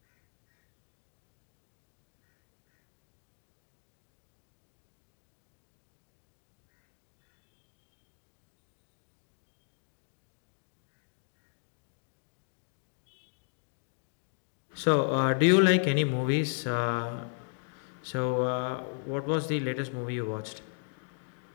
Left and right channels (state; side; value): silent; right; 54 dB below the other